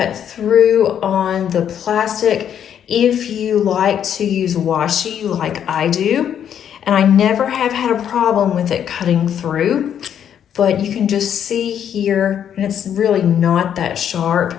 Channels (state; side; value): quieter; right; 9.2 dB